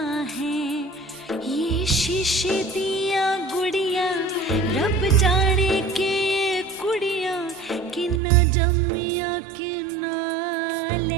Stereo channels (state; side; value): drops out; left; at 8.2 s